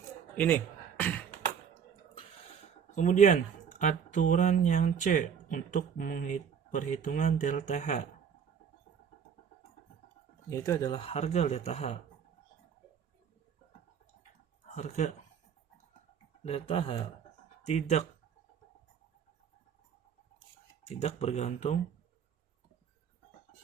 ini. Kemudian aturan yang C untuk perhitungan delta H, yaitu adalah harga delta H. Harga delta H tidak bergantung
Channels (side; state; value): left; quieter; 7.5 dB